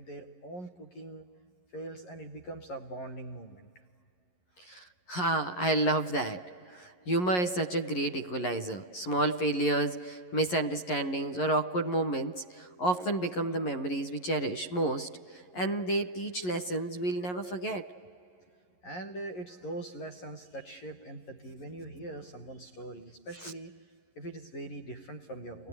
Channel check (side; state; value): right; late; 11 ms